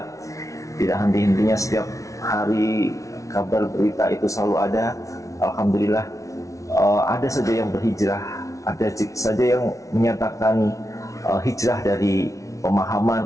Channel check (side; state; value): right; late; 0.15 ms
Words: tidak henti-hentinya setiap hari kabar berita itu selalu ada. Alhamdulillah, ada saja yang berhijrah, ada saja yang menyatakan hijrah dari